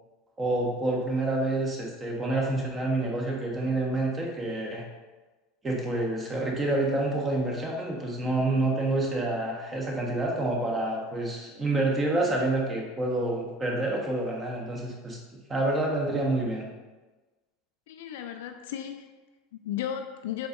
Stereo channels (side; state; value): both; normal; correlation 0.53